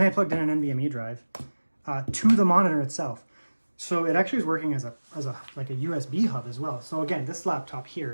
I plugged in an NVMe drive to the monitor itself. So it actually is working as a USB hub as well. So again, this laptop here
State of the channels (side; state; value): both; inverted; correlation -1.00